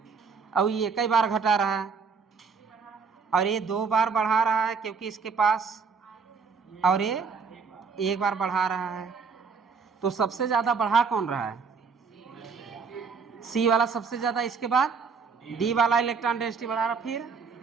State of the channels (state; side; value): quieter; left; 5.4 dB